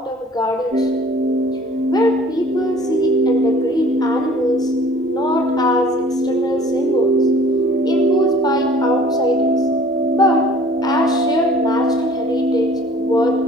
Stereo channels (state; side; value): normal; both; correlation 0.51